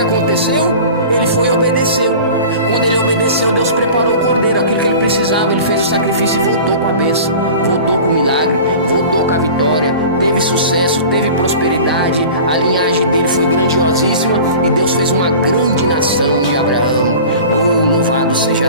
Ele foi e obedeceu. Quando ele obedeceu, Deus preparou o cordeiro, aquilo que ele precisava. Ele fez o sacrifício e voltou com a bênção, voltou com o milagre, voltou com a vitória. Teve sucesso, teve prosperidade. A linhagem dele foi grandiosíssima, e Deus fez uma grande nação de Abraão. Oh, louvado seja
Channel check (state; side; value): inverted; both; correlation -0.39